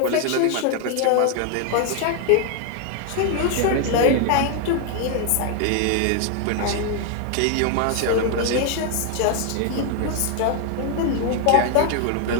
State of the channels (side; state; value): both; different; correlation 0.01